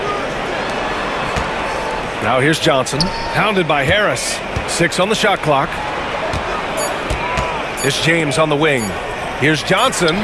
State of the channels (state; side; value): identical; both; correlation 1.00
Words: Now here's Johnson. Pounded by Harris. 6 on the shot clock. It's James on the wing. Here's Johnson.